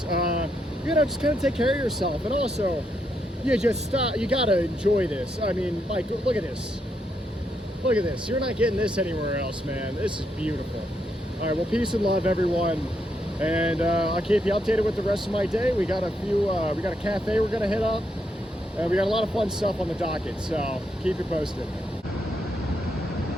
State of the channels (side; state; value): both; normal; correlation 0.79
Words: just kind of take care of yourself. And also, you just stop, you gotta enjoy this. I mean, like, look at this. Look at this, you're not getting this anywhere else, man. This is beautiful. All right, well, peace and love, everyone. And I'll keep you updated with the rest of my day. We got a cafe we're gonna hit up. We got a lot of fun stuff on the docket, so keep you posted.